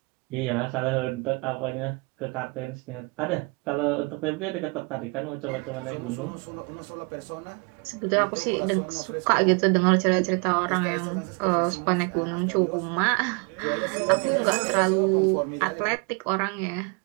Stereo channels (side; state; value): left; quieter; 30.6 dB